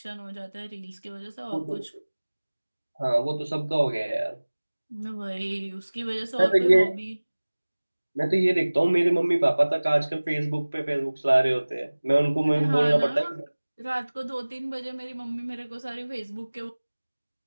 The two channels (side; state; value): both; inverted; correlation -1.00